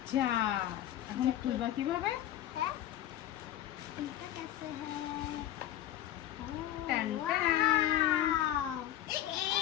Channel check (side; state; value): right; quieter; 12.5 dB